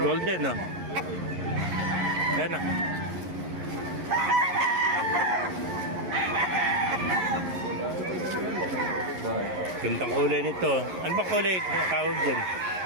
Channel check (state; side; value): late; left; 11 ms